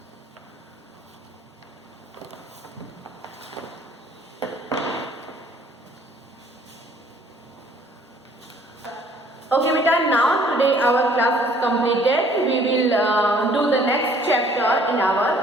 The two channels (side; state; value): both; normal; correlation 0.58